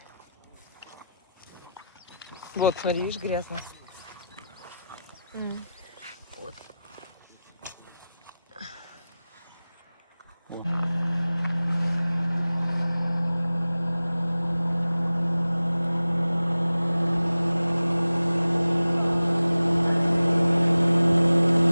Вот, смотри, видишь, грязно. Вот.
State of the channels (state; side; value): inverted; both; correlation -0.93